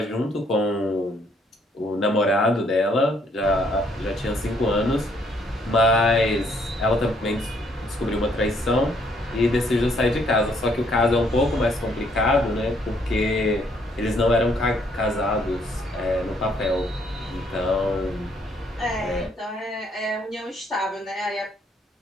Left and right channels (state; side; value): normal; both; correlation 0.68